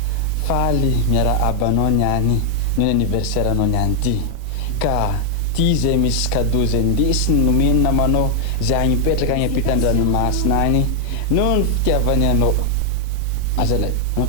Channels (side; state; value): both; different; correlation 0.00